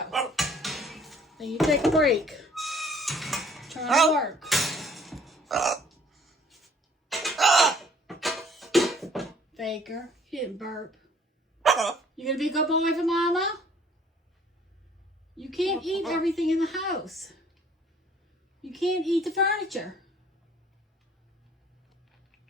Then you take a break. Try to work. Faker, you didn't burp. You gonna be a good boy for Mama? You can't eat everything in the house. You can't eat the furniture.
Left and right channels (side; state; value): both; normal; correlation 0.57